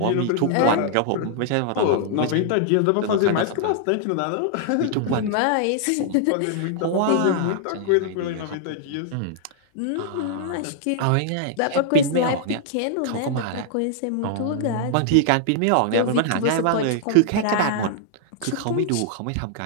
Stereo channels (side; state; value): both; different; correlation -0.01